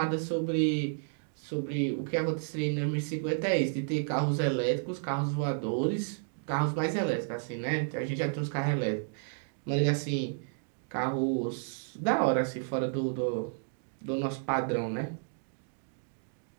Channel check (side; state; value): left; silent; digital silence